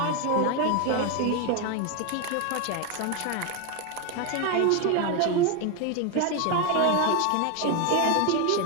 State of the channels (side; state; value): both; different; correlation 0.01